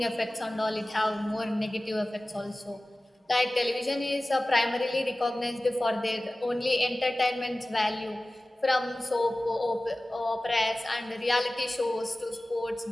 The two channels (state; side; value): normal; both; correlation 0.97